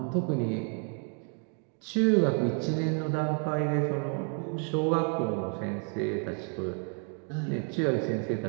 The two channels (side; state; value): left; quieter; 38.7 dB